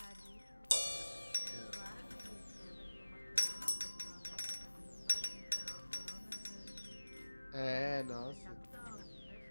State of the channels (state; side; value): inverted; both; correlation -1.00